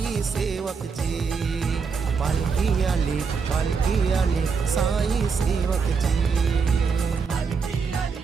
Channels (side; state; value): left; quieter; 5.4 dB